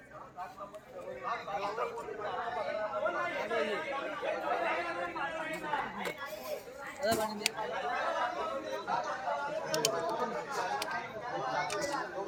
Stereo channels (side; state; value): both; identical; correlation 1.00